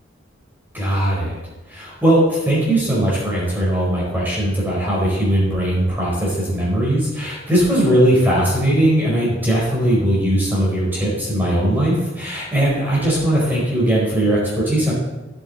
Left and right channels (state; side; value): normal; both; correlation 0.67